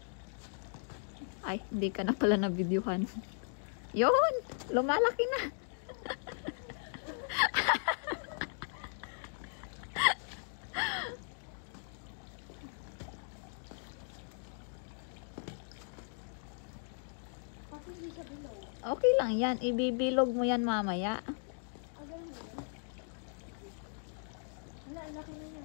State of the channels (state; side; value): silent; right; digital silence